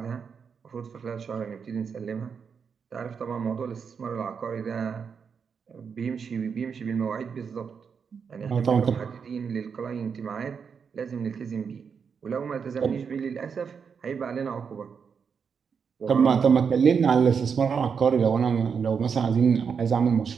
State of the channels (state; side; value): quieter; left; 6.3 dB